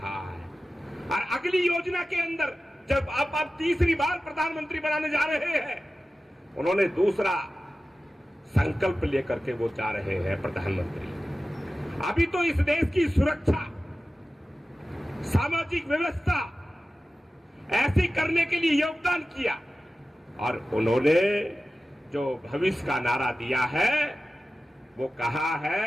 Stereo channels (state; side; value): normal; both; correlation 0.95